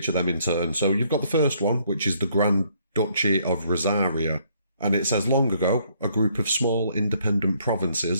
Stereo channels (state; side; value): inverted; both; correlation -0.68